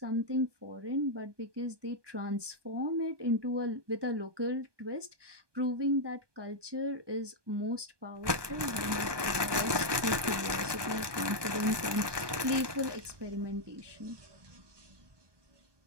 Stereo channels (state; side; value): late; left; 1.2 ms